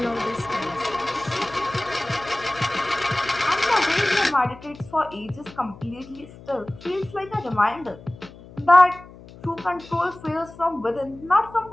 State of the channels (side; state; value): left; noise; hum, 19 dB below the sound